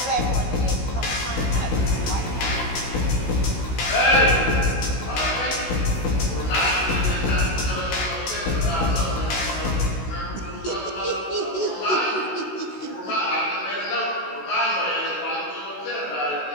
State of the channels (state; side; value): late; right; 16 ms